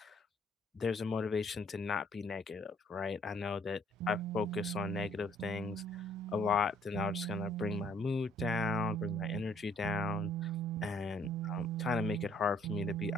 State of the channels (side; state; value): both; normal; correlation 0.63